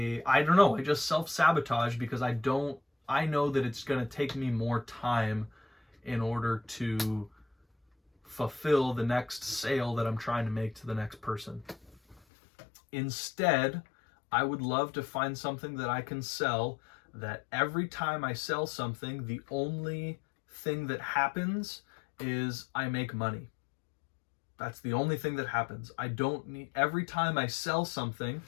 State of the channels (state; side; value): drops out; right; at 12.2 s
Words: don't know, I just self-sabotage because I know that it's going to take me more time in order to fulfill the next sale that I'm trying to make to the next person. Instead, I would love to find something that I can sell that every time I sell something, the only thing that happens is I make money. That's the only thing that happens. I don't need, every time I sell something,